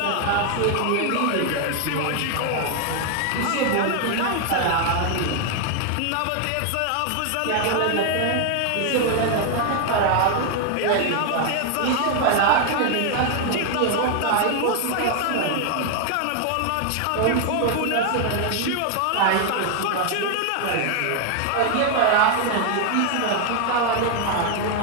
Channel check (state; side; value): different; both; correlation 0.00